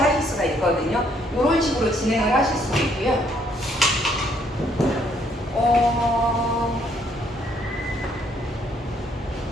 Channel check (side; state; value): both; normal; correlation 0.68